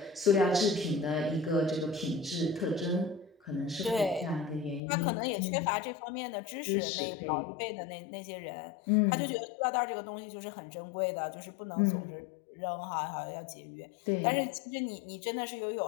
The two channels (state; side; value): drops out; right; at 4.8 s